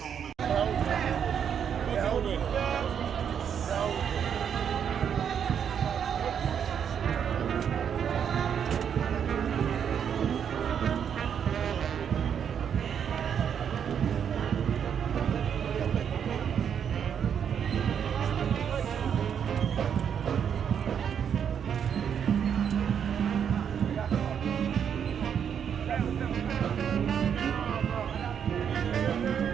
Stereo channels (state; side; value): quieter; left; 8.0 dB